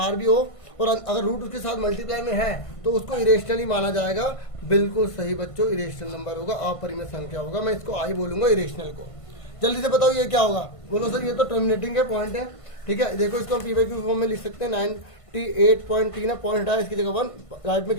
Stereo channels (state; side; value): late; right; 1.5 ms